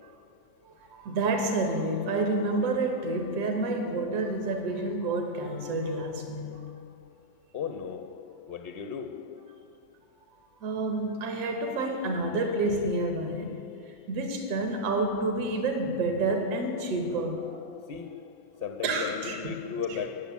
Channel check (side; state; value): left; late; 6.4 ms